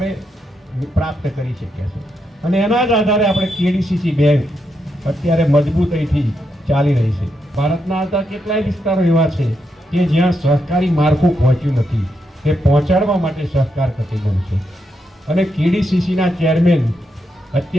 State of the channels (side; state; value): both; normal; correlation 0.82